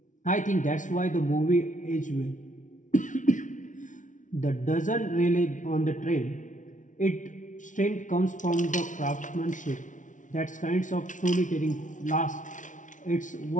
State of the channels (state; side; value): late; right; 0.37 ms